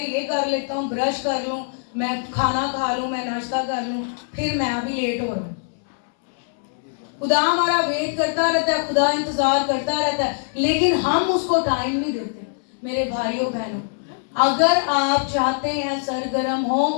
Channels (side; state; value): right; silent; 64 dB below the other